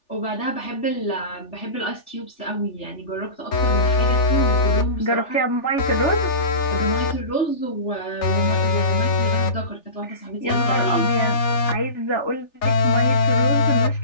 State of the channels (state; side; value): late; right; 3.4 ms